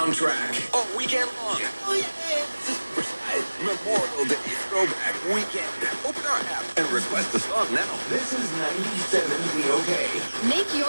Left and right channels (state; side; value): inverted; both; correlation -1.00